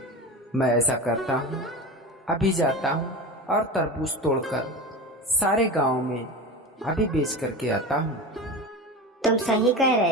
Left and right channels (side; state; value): both; normal; correlation 0.28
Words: मैं ऐसा करता हूँ, अभी जाता हूँ और तरबूज तोड़कर सारे गांव में अभी बेच करके आता हूँ। तुम सही कह